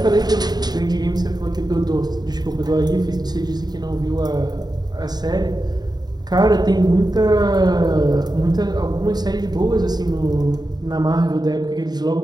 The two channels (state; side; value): late; left; 0.20 ms